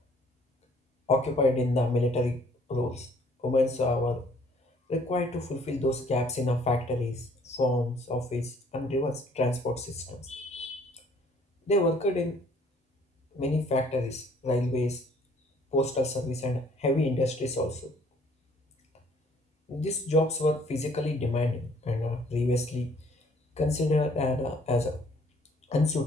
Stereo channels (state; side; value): normal; both; correlation 0.59